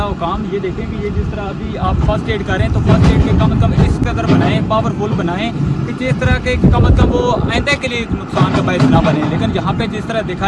हुकाम ये देखें कि ये जिस तरह अभी आप फर्स्ट एड कर रहे हैं तो फर्स्ट एड के कम से कम इस कदर बनाएं, पावरफुल बनाएं कि जिस तरह के कम से कम वो आइंदा के लिए नुकसान का बायस ना बने। लेकिन यहाँ पे जिस तरह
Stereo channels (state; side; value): identical; both; correlation 1.00